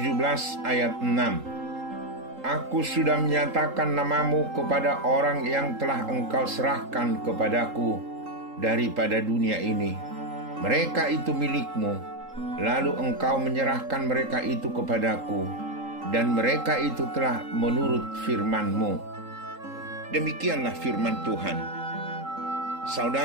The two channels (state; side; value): late; left; 3.8 ms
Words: ayat 6. Aku sudah menyatakan namamu kepada orang yang telah engkau serahkan kepadaku daripada dunia ini. Mereka itu milikmu, lalu engkau menyerahkan mereka itu kepadaku, dan mereka itu telah menurut firman-Mu. Demikianlah firman Tuhan.